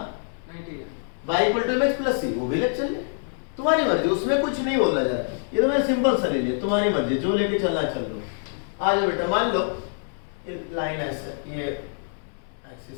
y equal to mx plus C, वो भी लेके चल ले, तुम्हारी मर्जी, उसमें कुछ नहीं बोला जा रहा है। ये तो मैं सिंपल सा ले लिया, तुम्हारी मर्जी, जो लेके चलना चल लो। आ जाओ बेटा, मान लो ये लाइन ऐसे, ये एक्सिस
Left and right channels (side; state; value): right; silent; 62 dB below the other